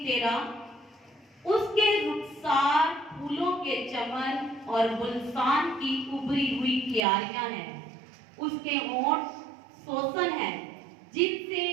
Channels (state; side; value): drops out; left; at 7.0 s